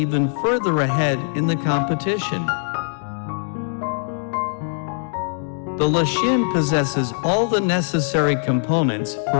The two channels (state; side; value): silent; right; digital silence